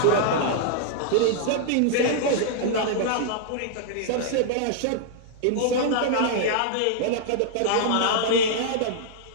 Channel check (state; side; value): different; both; correlation -0.01